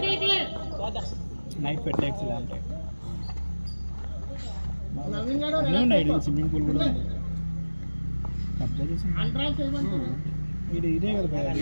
నైట్ పెట్టేక్స్ ఇలా ఉంటాయి. అన్నీ ఉన్నాయి. స్విమ్మింగ్ పూల్ కూడా ఉంది. కబ్జా చేసి ఇదే కదా భయ,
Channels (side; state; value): both; inverted; correlation -1.00